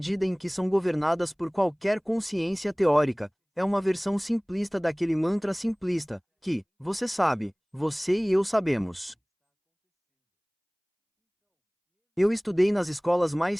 em que são governadas por qualquer consciência teórica, é uma versão simplista daquele mantra simplista, que, você sabe, você e eu sabemos. Eu estudei nas escolas mais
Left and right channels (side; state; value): both; identical; correlation 1.00